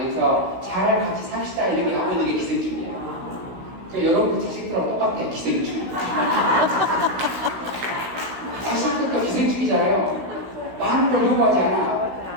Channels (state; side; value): late; left; 16 ms